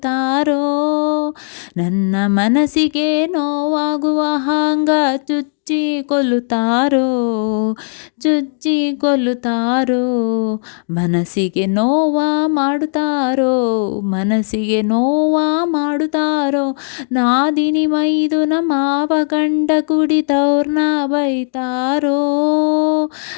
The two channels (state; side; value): silent; right; digital silence